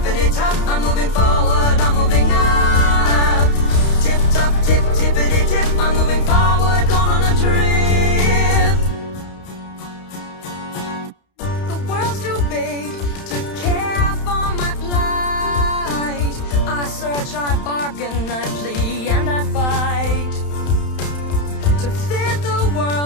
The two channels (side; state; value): right; late; 31 ms